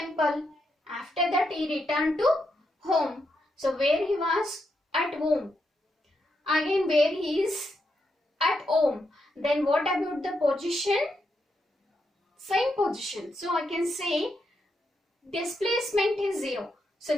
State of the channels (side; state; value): both; normal; correlation 0.82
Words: After that he returned to home. So where he was? At home. Again where he is? At home. Then what about the position? Same position. So I can say displacement is 0. So